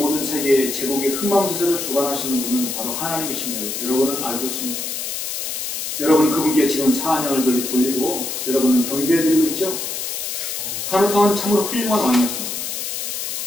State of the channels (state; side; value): noise; left; hiss, 4 dB below the sound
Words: 세계의 제국의 흥망성쇠를 주관하시는 분은 바로 하나님이십니다. 여러분은 알고 있습니다. 여러분은 그분께 지금 찬양을 돌리고 여러분은 경배해드리고 있죠? 카누트 왕은 참으로 훌륭한 왕이었습니다.